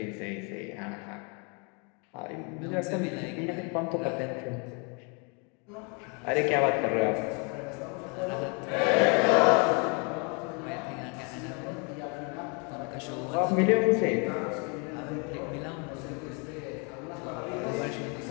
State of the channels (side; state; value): right; quieter; 34.1 dB